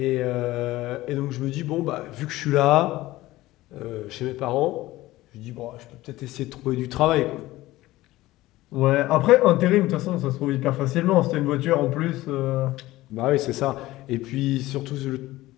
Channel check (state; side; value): quieter; right; 17.4 dB